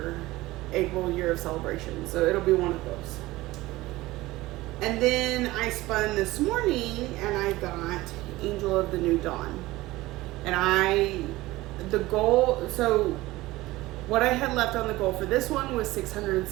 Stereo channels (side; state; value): left; quieter; 18.7 dB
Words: April Year of Celebration. So it'll be one of those. And then I spun this morning and I got Angel of the New Dawn. And the goal, so what I had left on the goal for this one was